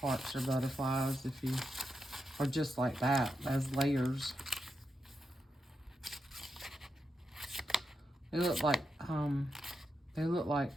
or butterflies if you, or just like that, as layers. They look like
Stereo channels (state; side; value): normal; both; correlation 0.86